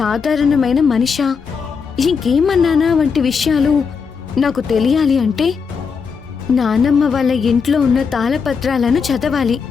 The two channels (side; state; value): right; quieter; 5.8 dB